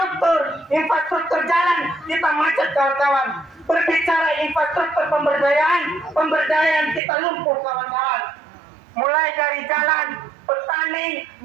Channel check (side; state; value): left; drops out; at 7.0 s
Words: infrastruktur jalan, kita macet, kawan-kawan. Berbicara infrastruktur pemberdayaan kita lumpuh, kawan-kawan. Mulai dari jalan, petani,